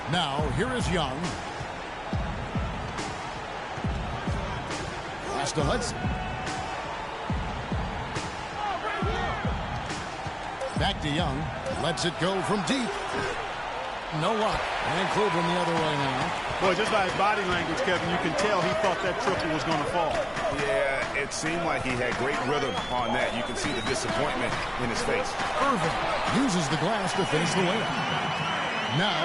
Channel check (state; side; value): identical; both; correlation 1.00